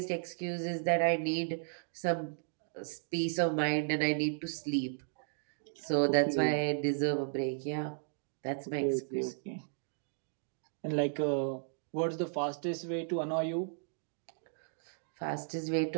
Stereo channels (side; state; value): left; silent; digital silence